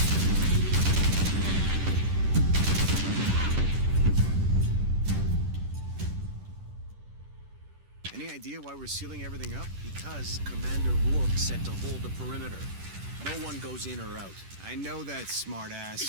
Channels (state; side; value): late; left; 10 ms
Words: Any idea why we're sealing everything up? Because Commander Rourke said to hold the perimeter. No one goes in or out. I know that,